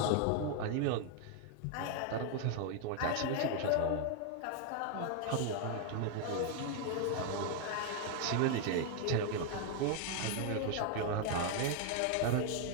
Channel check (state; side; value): different; both; correlation 0.00